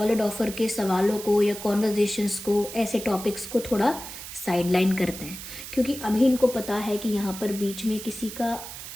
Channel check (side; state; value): right; noise; hiss, 11 dB below the sound